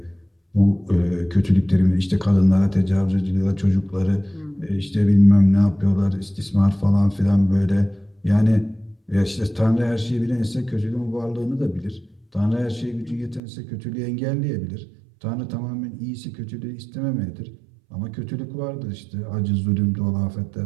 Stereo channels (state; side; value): drops out; left; at 13.4 s